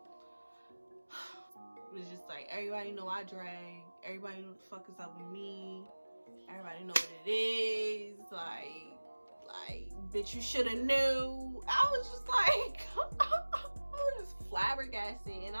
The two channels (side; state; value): both; inverted; correlation -1.00